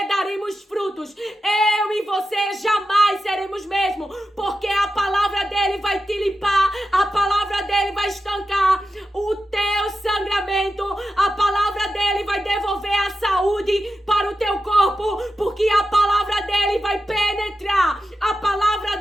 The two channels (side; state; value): both; normal; correlation 0.91